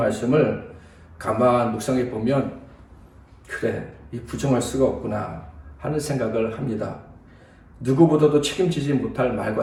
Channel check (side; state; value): both; identical; correlation 1.00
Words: 가만 묵상해 보면 그래, 이 부정할 수가 없구나 하는 생각을 합니다. 누구보다도 책임지지 못할 말과